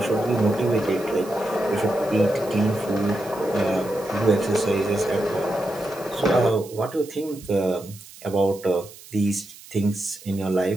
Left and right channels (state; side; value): noise; right; hiss, 19 dB below the sound